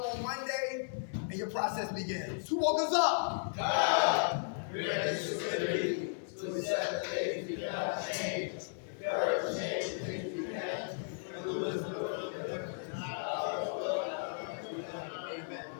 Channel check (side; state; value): right; silent; 54 dB below the other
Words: on Monday, and your process begins. Who woke us up? God. Ready to set the things we cannot change. Courage, change the things we can, and the wisdom of the Amen.